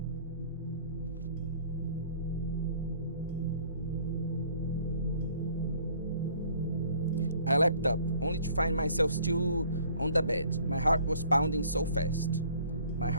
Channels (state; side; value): inverted; both; correlation -0.56